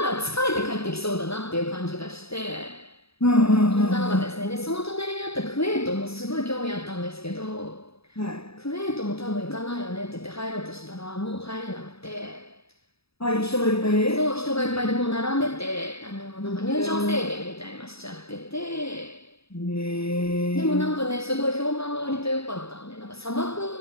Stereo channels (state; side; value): late; right; 0.77 ms